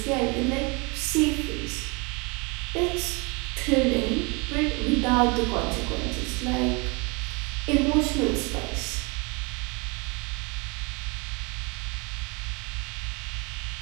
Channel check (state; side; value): quieter; left; 29.5 dB